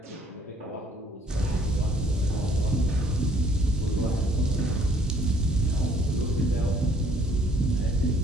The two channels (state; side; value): normal; both; correlation 0.61